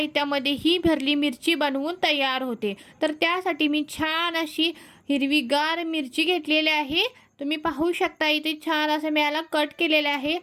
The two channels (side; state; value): both; identical; correlation 1.00